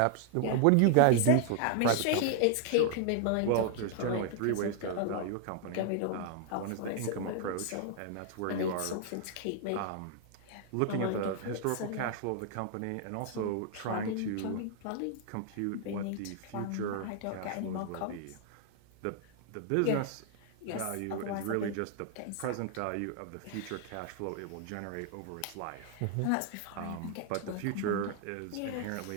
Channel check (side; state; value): both; different; correlation 0.00